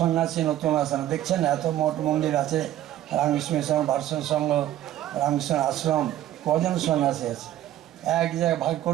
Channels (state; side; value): quieter; left; 12.8 dB